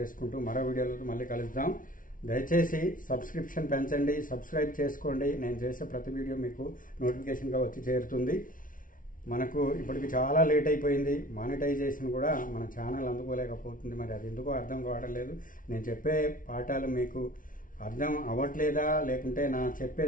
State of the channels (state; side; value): late; right; 0.39 ms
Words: మరో వీడియోలో మళ్ళీ కలుద్దాం. దయచేసి సబ్స్క్రిప్షన్ పెంచండి, సబ్స్క్రైబ్ చేసుకోండి. నేను చేసే ప్రతి వీడియో మీకు నోటిఫికేషన్గా వచ్చి చేరుతుంది. మనకు ఇప్పటికి చాలా లేట్ అయిపోయింది. మానిటైజేషన్ కూడా మన ఛానల్ అందుకోలేకపోతుంది. మరి అది ఎందుకో అర్థం కావడం లేదు. నేను చెప్పే పాఠాలు మీకు అర్థం అవ్వట్లేదా, లేకుంటే నా చెప్పే